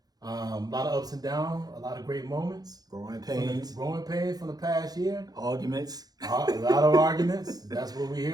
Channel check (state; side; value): late; left; 0.19 ms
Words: A lot of ups and downs, a lot of great moments. Growing pains from the past year. Arguments. A lot of arguments. That's what we're